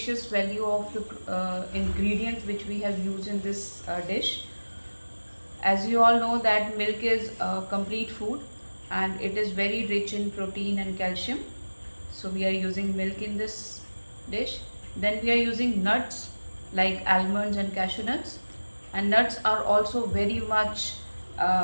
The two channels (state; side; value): inverted; both; correlation -1.00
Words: value of the ingredients which we have used in this dish. As you all know that milk is a complete food and it is very rich in protein and calcium. So we are using milk in this dish. Then we are using nuts like almonds and cashew nuts, and nuts are also very much